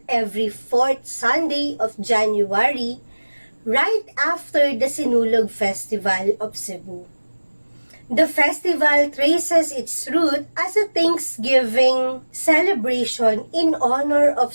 every fourth Sunday of January, right after the Sinulog Festival of Cebu. The festival traces its root as a Thanksgiving celebration in honor of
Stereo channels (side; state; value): both; inverted; correlation -1.00